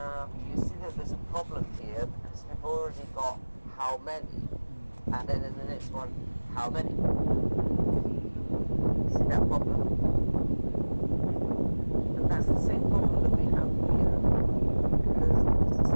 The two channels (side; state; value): both; inverted; correlation -1.00